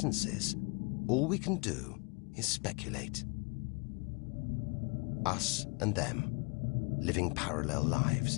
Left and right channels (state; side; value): quieter; right; 32.1 dB